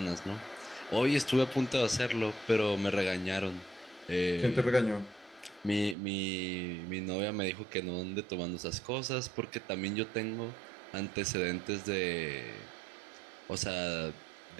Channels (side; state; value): left; drops out; at 6.0 s